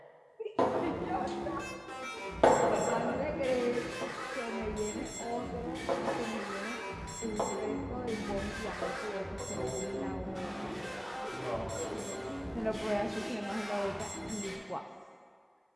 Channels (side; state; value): both; identical; correlation 1.00